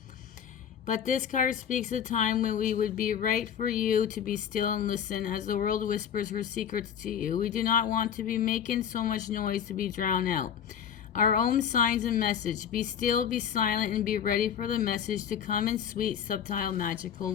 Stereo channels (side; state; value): right; quieter; 8.5 dB